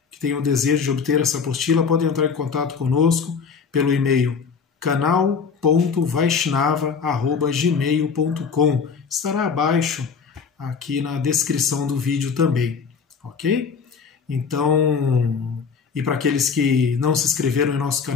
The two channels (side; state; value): right; quieter; 5.8 dB